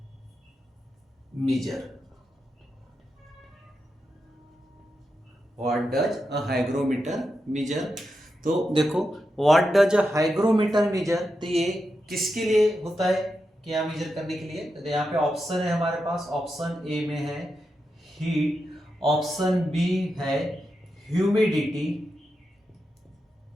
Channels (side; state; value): both; normal; correlation 0.87